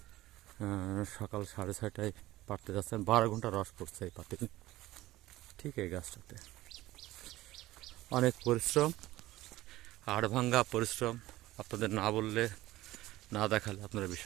সকাল 6:30টায় পাড়তে যাচ্ছেন। 12 ঘন্টা রস পড়ছে এই পাতে, ঠিক এই গাছটাতে। অনেক পরিশ্রম, হাড়ভাঙ্গা পরিশ্রম। আপনাদের না বললে, না দেখালে আপনারা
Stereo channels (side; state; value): left; quieter; 16.8 dB